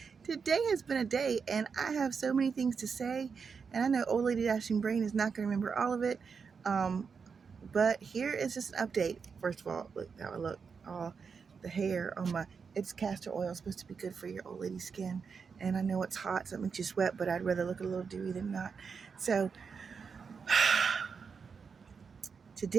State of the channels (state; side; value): quieter; left; 5.7 dB